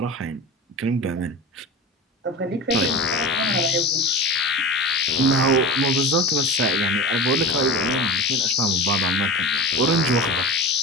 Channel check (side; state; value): both; normal; correlation 0.31